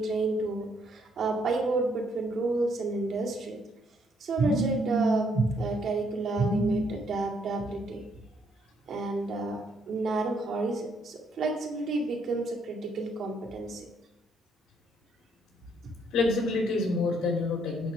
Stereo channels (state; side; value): normal; both; correlation 0.70